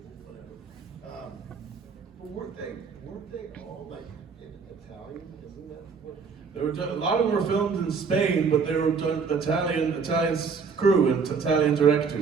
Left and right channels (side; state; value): left; quieter; 5.4 dB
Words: whatever. But weren't they all like in Italian? Isn't that what? A lot of them were filmed in Spain, but they were done Italian crew and Italian